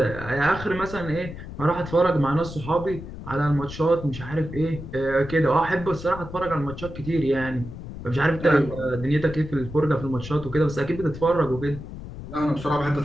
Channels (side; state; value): left; noise; rumble, 11 dB below the sound